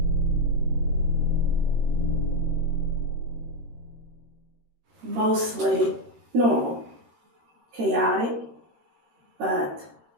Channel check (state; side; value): late; left; 13 ms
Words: Mostly normal, chaotic, but